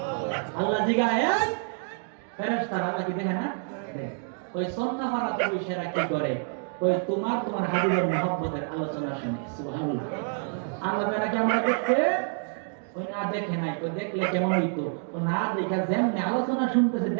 আল্লাহ জিগায়, ফেরেশতারা আল্লাহ কি দেখে না? ওই সন্নাহারাতে বসেরা কি করে? ওই তোমার হাবিবের মুহাব্বতের আলোচনা শুনে। সুবহানাল্লাহ। আল্লাহ তাআলা কি আমরা দেখতে? ওই না দেখে নাই, ওই দেখলে কেমন হইতো? ও না দেখা যেমনি আলোচনা শুনতেছে,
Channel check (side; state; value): left; silent; 55 dB below the other